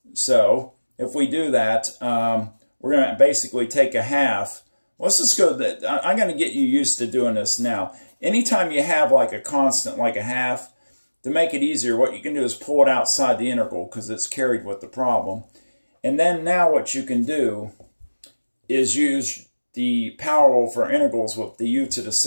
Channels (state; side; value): inverted; both; correlation -1.00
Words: So, if we do that, we're going to basically take a half. Let's just go, I'm going to get you used to doing this now. Anytime you have like a constant, like a half, to make it easier, what you can do is pull it outside the integral, because it's carried with the problem. And then now what you can do is use the power rule for integrals with the u to the